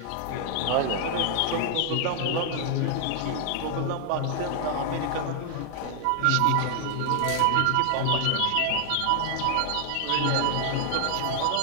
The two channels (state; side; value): different; both; correlation 0.00